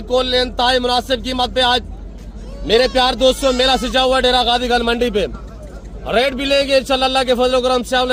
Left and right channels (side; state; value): both; identical; correlation 1.00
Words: इंतहाई मुनासिब कीमत पे आज मेरे प्यार दोस्तों मेला सजा हुआ डेरा गाजी खान मंडी पे। रेट भी लेंगे इंशाल्लाह, अल्लाह के फजल करम से।